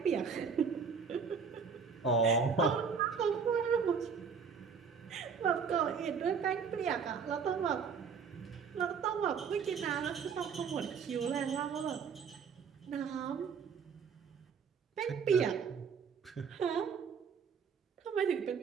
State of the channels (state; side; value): quieter; left; 6.1 dB